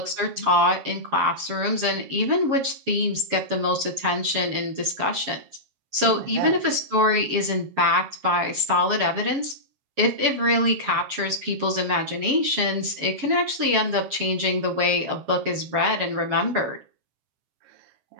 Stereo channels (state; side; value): late; left; 7.4 ms